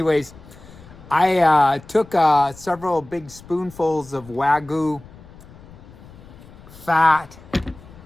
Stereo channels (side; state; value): left; noise; rumble, 20 dB below the sound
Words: I took several big spoonfuls of Wagyu fat